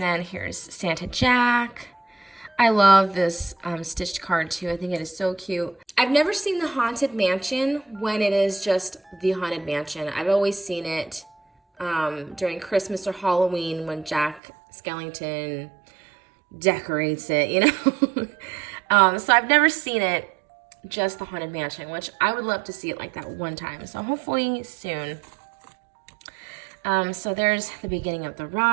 here's Santa Jack. I love this stitched card too. I think it is so cute. I've never seen the Haunted Mansion when it is just the Haunted Mansion. I've always seen it during Christmas or Halloween when Jack Skellington decorates it, you know. So I've never seen it just the Haunted Mansion, which I would love to see it like that one time. So hopefully soon. So there's the beginning of the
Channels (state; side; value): drops out; left; at 14.4 s